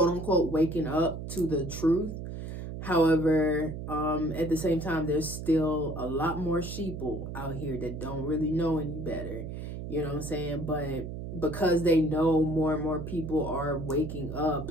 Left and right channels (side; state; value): right; noise; hum, 7 dB below the sound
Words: unquote, waking up to the truth. However, at the same time, there's still a lot more sheeple out here that don't really know any better. You know what I'm saying? But because they know more and more people are waking up,